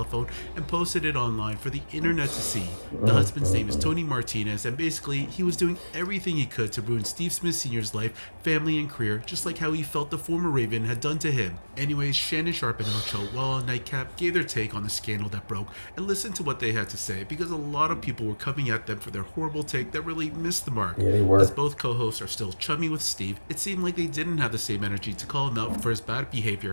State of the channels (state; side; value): inverted; both; correlation -1.00